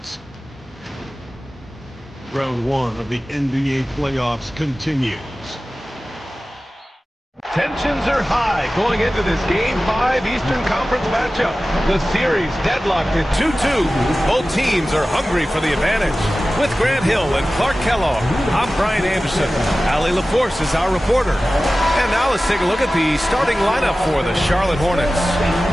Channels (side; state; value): both; normal; correlation 0.96